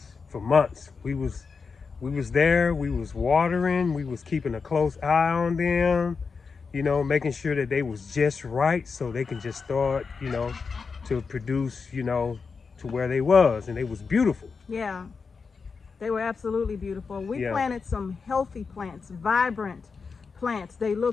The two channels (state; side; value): quieter; right; 5.1 dB